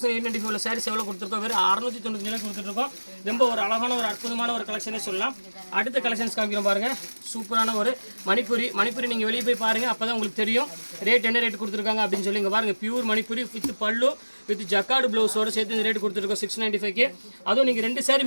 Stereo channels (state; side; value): inverted; both; correlation -1.00